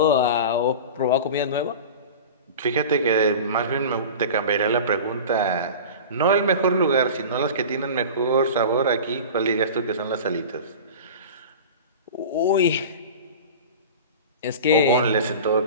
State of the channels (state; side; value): inverted; both; correlation -0.34